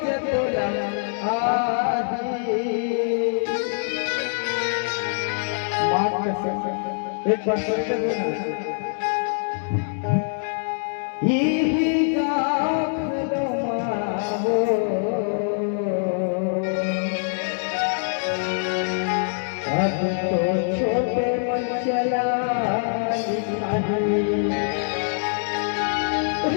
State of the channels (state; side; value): silent; right; digital silence